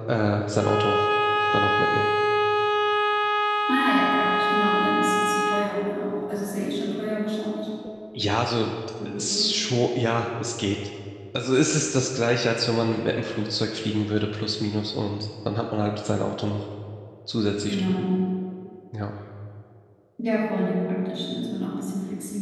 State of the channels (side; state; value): both; identical; correlation 1.00